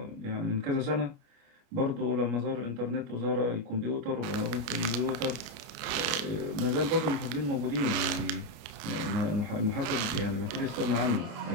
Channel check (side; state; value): left; late; 29 ms